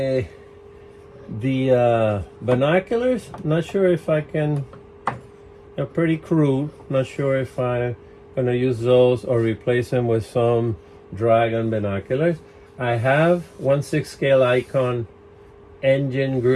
binoculars, not sure if I can. They're pretty crude. Not sure if I'm gonna use those or replace them with some Dragon binoculars. I have 1/6 scale icon engine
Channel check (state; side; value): identical; both; correlation 1.00